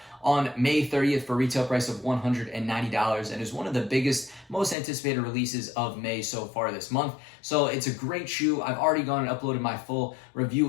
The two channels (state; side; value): drops out; right; at 4.8 s